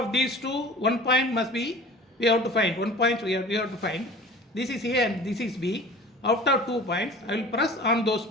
these two, 1 point must be, we have to find 1 point. We have to find. This is A and this is B. Out of 2 points, I will press on those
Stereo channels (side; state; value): both; normal; correlation 0.42